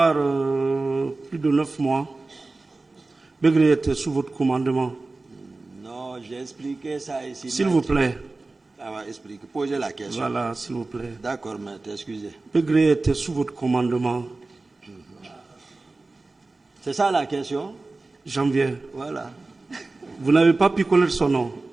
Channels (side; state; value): left; quieter; 3.4 dB